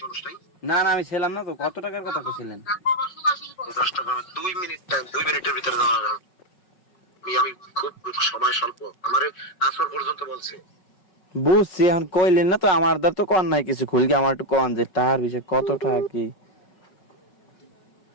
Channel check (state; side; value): late; right; 5.4 ms